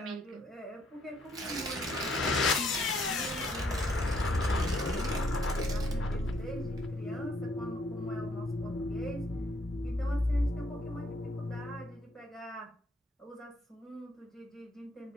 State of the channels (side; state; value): both; normal; correlation 0.68